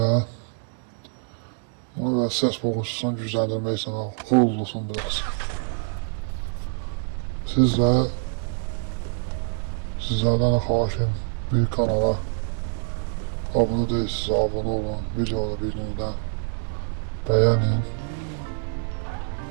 Bunu biraz səs boğucusunu gücləndirmək üçün kurulsun biraz. Sizlerden xahişim bir kanala abone değilsiniz, abone olun, videoları birinizden beğenin.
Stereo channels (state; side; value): silent; left; digital silence